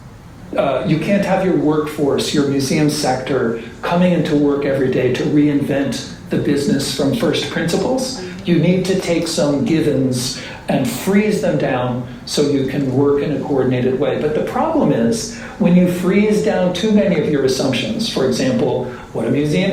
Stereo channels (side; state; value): both; identical; correlation 1.00